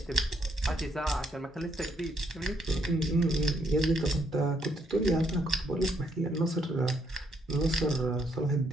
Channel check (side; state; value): both; normal; correlation 0.72